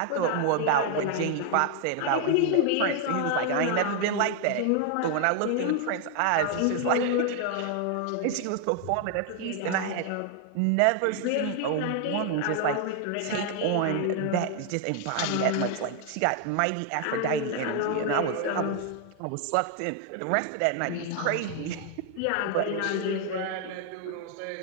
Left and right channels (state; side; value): different; both; correlation 0.00